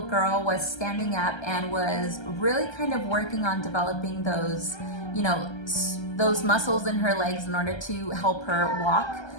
girl was standing up and was really kind of working on developing those, you know, those muscles in her legs in order to help her walk,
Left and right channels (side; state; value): right; late; 1.3 ms